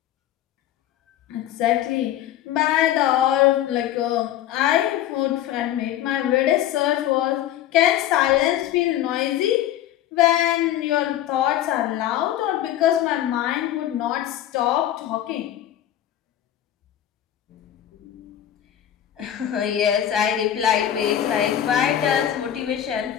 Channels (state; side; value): quieter; right; 11.7 dB